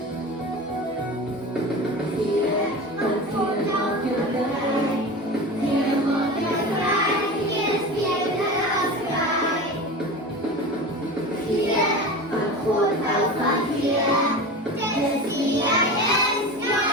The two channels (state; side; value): normal; both; correlation 0.30